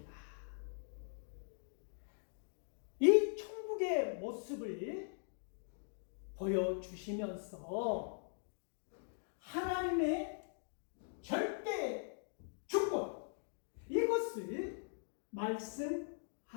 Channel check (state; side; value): silent; right; digital silence